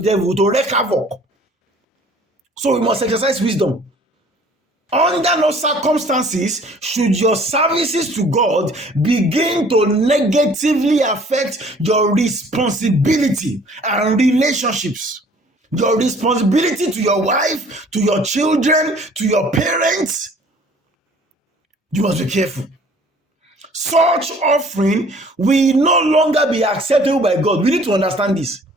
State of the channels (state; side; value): normal; both; correlation 0.54